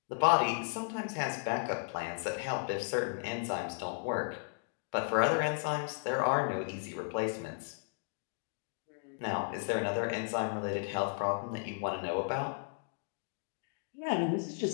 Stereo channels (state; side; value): silent; right; digital silence